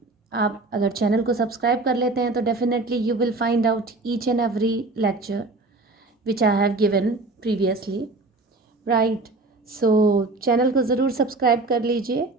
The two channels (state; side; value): quieter; left; 3.2 dB